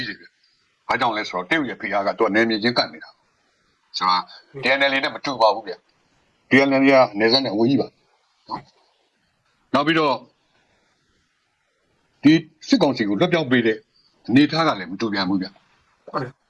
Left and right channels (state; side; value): identical; both; correlation 1.00